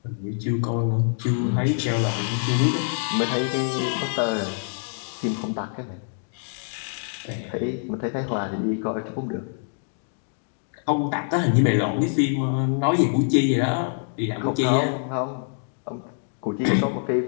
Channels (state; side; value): silent; right; digital silence